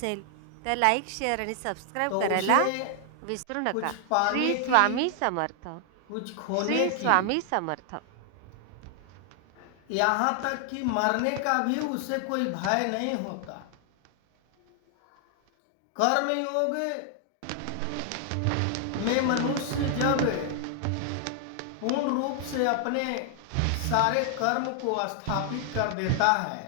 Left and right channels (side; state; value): both; different; correlation 0.00